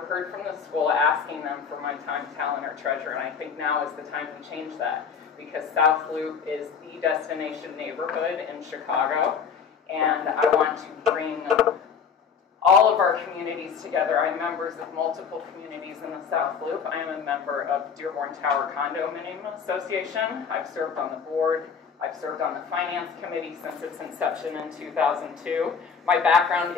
heard from the school asking them for my time, talent, or treasure, and I think now is the time to change that, because South Loop is the destination neighborhood in Chicago, and I want to bring all of our communities together. I'm members of multiple communities in the South Loop. I am a member of Dearborn Tower Condominium Association. I've served on the board. I've served on the finance committee since its inception in 2002. My background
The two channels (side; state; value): right; quieter; 6.5 dB